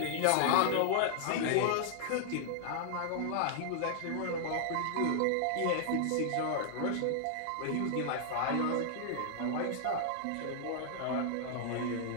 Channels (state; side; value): different; both; correlation 0.00